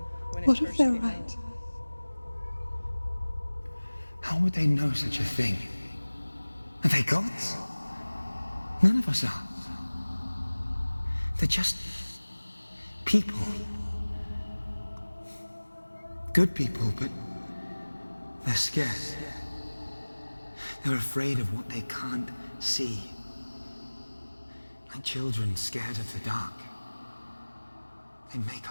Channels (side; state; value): both; inverted; correlation -1.00